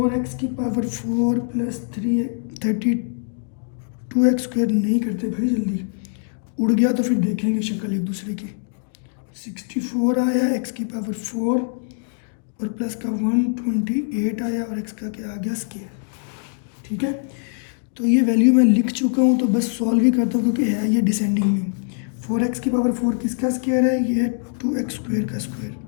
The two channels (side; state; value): right; silent; 64 dB below the other